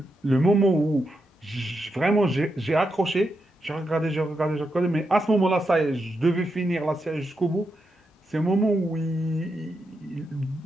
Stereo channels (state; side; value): normal; both; correlation 0.85